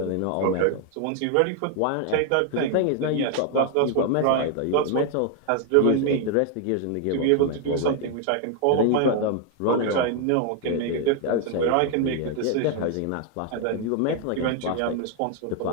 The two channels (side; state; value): both; different; correlation 0.00